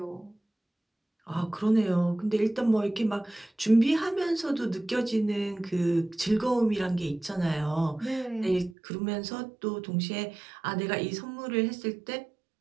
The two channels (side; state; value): left; drops out; at 8.8 s